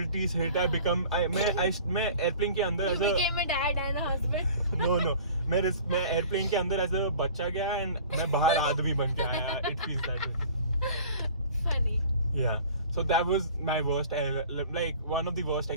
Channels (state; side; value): inverted; both; correlation -0.45